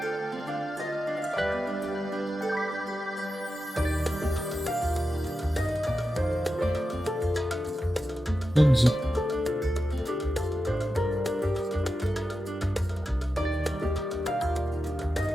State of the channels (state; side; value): normal; both; correlation 0.90